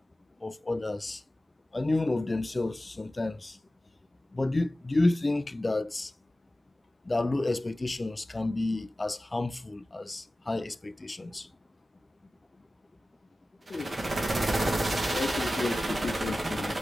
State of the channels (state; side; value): normal; both; correlation 0.95